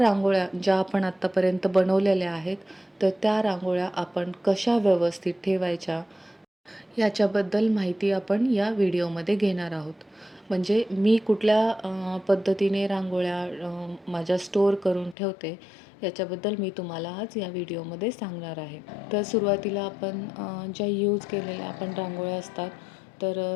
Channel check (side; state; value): right; drops out; at 15.2 s